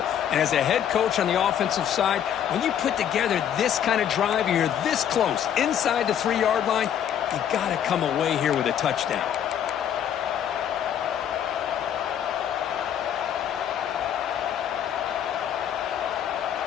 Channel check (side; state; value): right; quieter; 9.5 dB